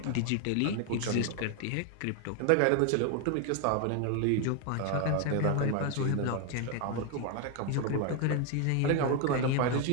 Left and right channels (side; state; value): both; different; correlation 0.01